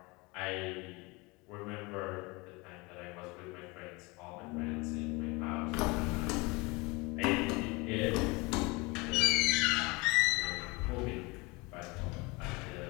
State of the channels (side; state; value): right; quieter; 25.6 dB